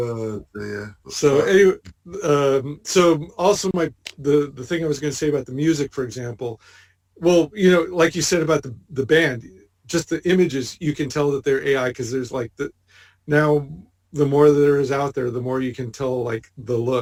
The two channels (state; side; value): identical; both; correlation 1.00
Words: dear. So anyway, so also the thing I was going to say about the music, for example, well, like you said about the band, just the images, you can tell that they're AI because there's like now the more there is out there, the more you can tell like the